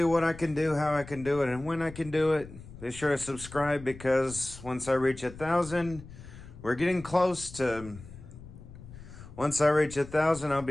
what I can do, how I can do it, and when I can do it. Be sure to subscribe, because once I reach 1,000, we're getting close to... Once I reach 1,000, I'll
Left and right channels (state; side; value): noise; left; rumble, 16 dB below the sound